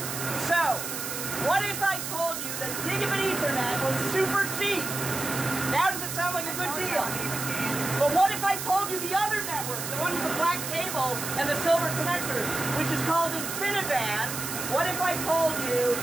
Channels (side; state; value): right; noise; hiss, 5 dB below the sound